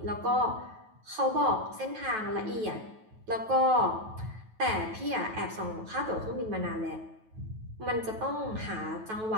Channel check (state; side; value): late; left; 9.2 ms